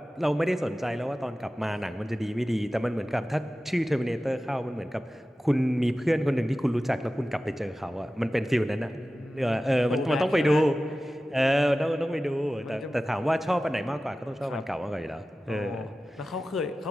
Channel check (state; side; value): normal; both; correlation 0.95